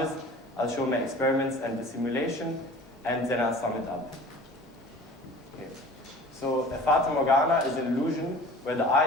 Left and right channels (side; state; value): both; normal; correlation 0.44